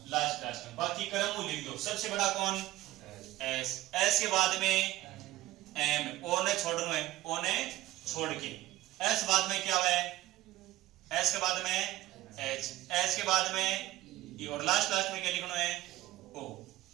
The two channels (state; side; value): quieter; left; 16.2 dB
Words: लास्ट में। बाकी क्रम को लिख दो। सबसे बड़ा कौन? एस। एस के बाद में एम, ओ ने छोड़ना है, ओ ने छोड़ के। एस बाद में क्या है? एस के बाद में एच, एच के बाद में ई और लास्ट में क्या लिखना है? ओ।